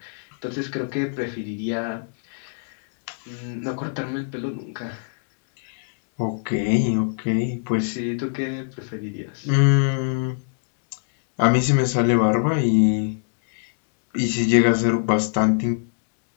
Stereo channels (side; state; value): right; silent; digital silence